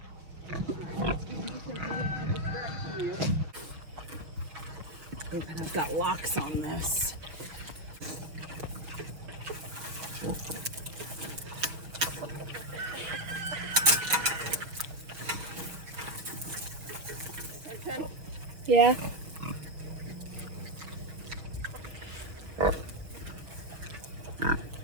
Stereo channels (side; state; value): left; late; 6.1 ms